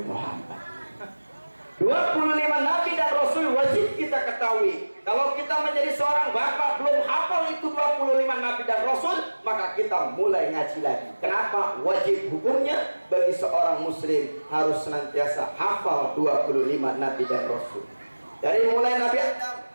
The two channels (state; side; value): inverted; both; correlation -1.00